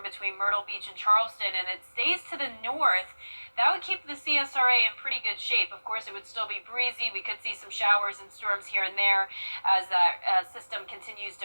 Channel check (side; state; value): both; inverted; correlation -1.00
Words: between Myrtle Beach and Charleston, and it stays to the north. That would keep the CSRA in pretty good shape. Of course, it would still be breezy. We could see some showers and storms here and there as that system continues